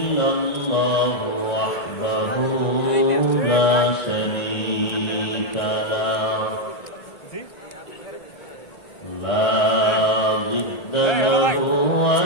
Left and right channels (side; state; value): right; late; 1.8 ms